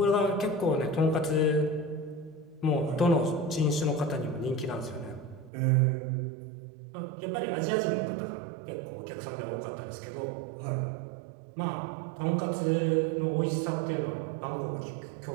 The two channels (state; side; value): drops out; left; at 5.5 s